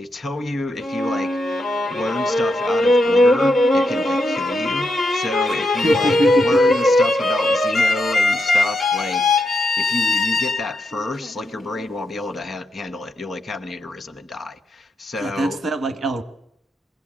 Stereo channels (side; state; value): both; normal; correlation 0.83